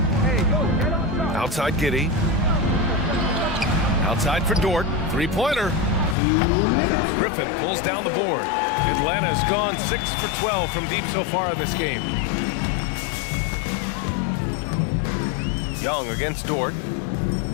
Outside Giddey. Outside for Dort. Three-pointer. Griffin pulls down the board. Atlanta's gone 6 for 12 from deep so far in this game. Young against Dort.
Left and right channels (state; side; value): drops out; right; at 6.2 s